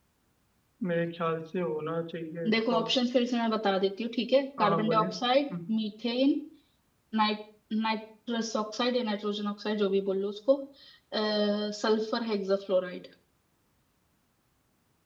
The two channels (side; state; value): both; identical; correlation 1.00